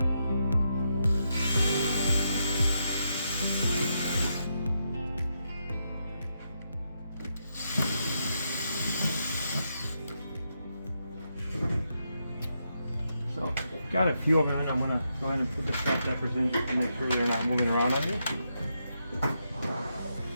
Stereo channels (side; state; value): both; inverted; correlation -0.82